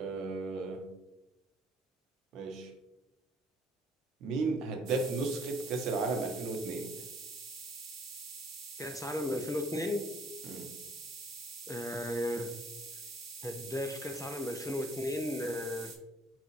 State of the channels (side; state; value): both; normal; correlation 0.60